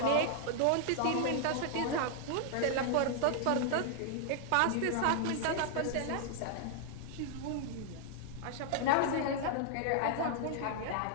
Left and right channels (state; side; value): different; both; correlation 0.00